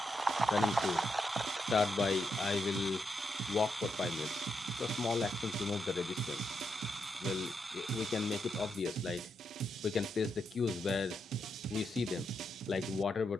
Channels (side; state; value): both; normal; correlation 0.83